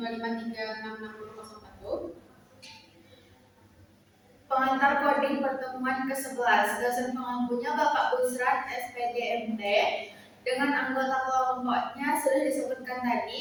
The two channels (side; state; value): both; identical; correlation 1.00